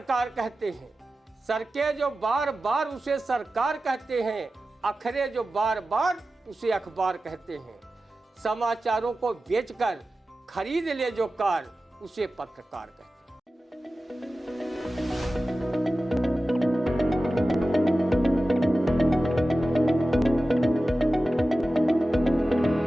कहते हैं, सड़कें जो बार बार उसे सरकार कहते हैं, अखरे जो बार बार उसे अखबार कहते हैं। समाचारों को बेचकर खरीद ले जो कार, उसे पत्रकार कहते हैं।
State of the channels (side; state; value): both; normal; correlation 0.94